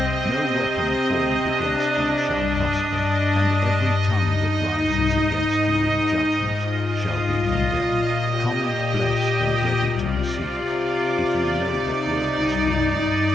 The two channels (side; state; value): both; normal; correlation 0.84